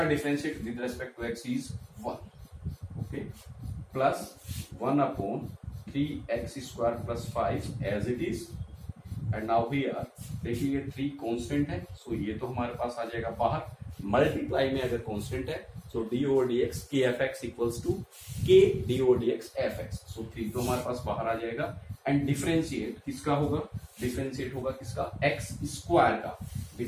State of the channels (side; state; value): both; identical; correlation 1.00